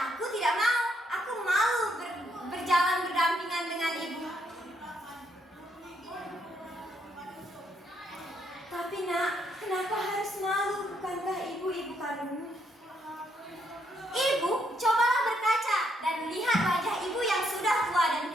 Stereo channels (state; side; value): normal; both; correlation 0.74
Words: aku tidak mau. Aku malu berjalan berdampingan dengan ibu. Tapi, nak, kenapa harus malu? Bukankah ibu kandungmu? Ibu, cobalah berkaca dan lihat wajah ibu yang sudah tua dan